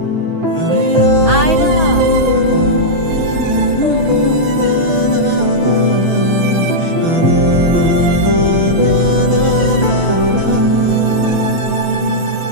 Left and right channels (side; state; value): left; late; 6.2 ms